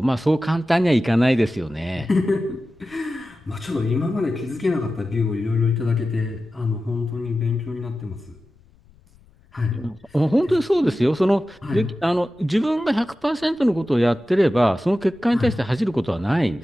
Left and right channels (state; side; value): noise; left; rumble, 30 dB below the sound